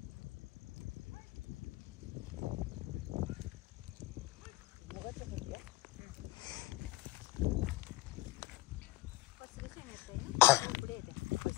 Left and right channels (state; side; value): quieter; right; 18.4 dB